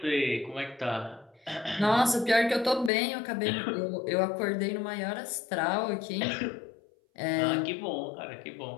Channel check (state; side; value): drops out; right; at 2.9 s